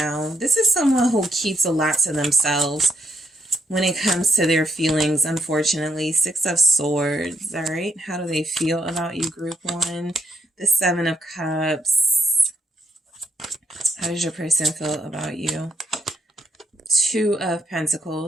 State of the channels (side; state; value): both; normal; correlation 0.75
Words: This is someone who keeps a lot to themselves when it comes to their feelings, unfortunately. Six of Swords, all right? How do they feel about you, Group 1? The Seven of Cups. How does your person feel about you? Two of